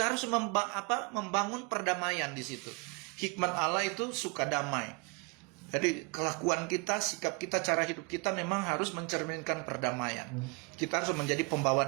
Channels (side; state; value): left; quieter; 30.4 dB